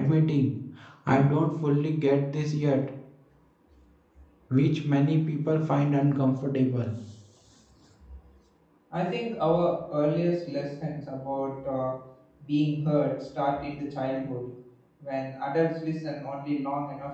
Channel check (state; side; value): identical; both; correlation 1.00